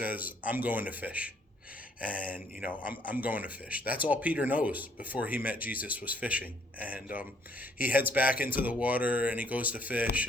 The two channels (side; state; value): both; normal; correlation 0.66